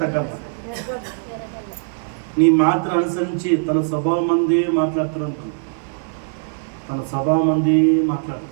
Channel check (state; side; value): silent; left; 65 dB below the other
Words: తగ్గాలన్నా? నీ మాటను అనుసరించి తన స్వభావం మంది మాట్లాడుతూ ఉంటుంది.